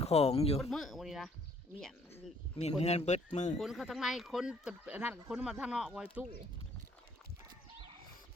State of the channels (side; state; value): both; normal; correlation 0.62